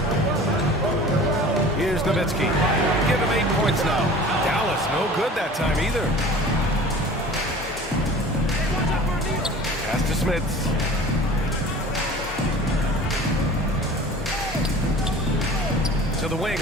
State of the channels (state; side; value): normal; both; correlation 0.42